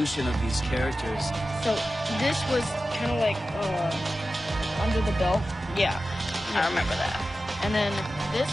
of these characters. So this was kind of like under the belt. Yeah, I remember that. And then this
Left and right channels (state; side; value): normal; both; correlation 0.94